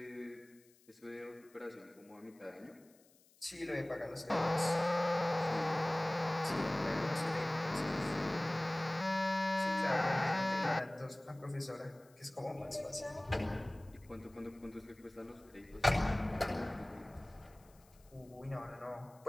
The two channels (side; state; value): left; noise; hiss, 29 dB below the sound